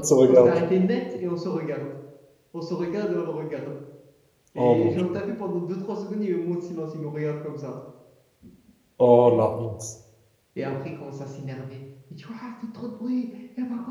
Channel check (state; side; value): identical; both; correlation 1.00